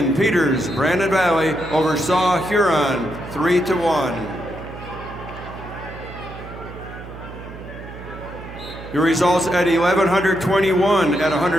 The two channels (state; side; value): noise; right; hum, 14 dB below the sound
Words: Peters, Brandon Valley over Saw Huron, 3-1. Your results at 1121 at